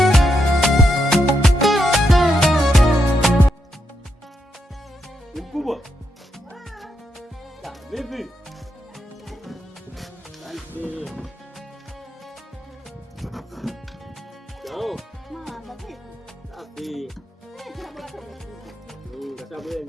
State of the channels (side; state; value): both; normal; correlation 0.81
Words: Mkubwa. Vipi? Asante. Ciao. Safi. Kata bwana